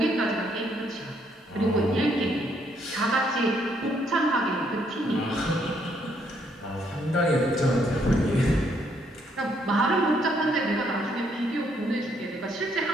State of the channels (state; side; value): normal; both; correlation 0.71